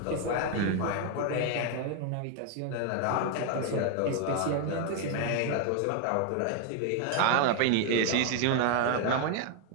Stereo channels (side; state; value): both; different; correlation 0.01